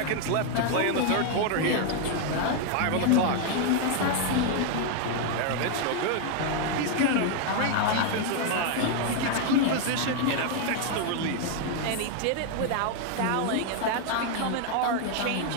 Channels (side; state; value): both; different; correlation 0.00